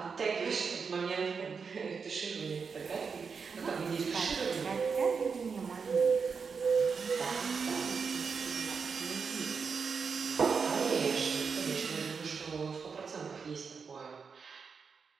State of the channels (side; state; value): left; quieter; 5.6 dB